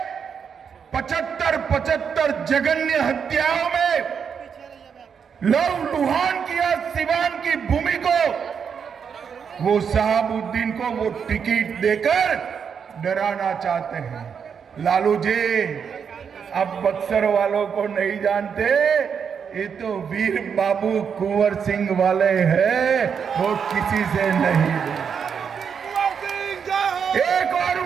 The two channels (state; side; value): quieter; left; 6.9 dB